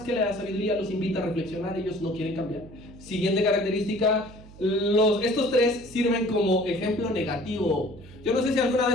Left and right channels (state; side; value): noise; right; hum, 20 dB below the sound